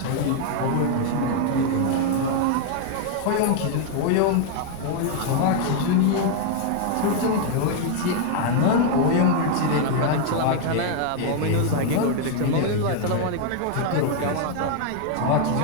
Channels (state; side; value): different; both; correlation 0.00